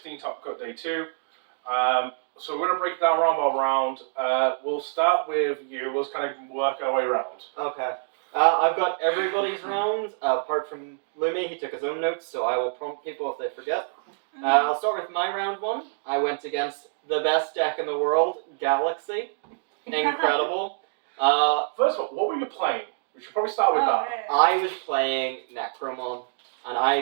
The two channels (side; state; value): left; silent; digital silence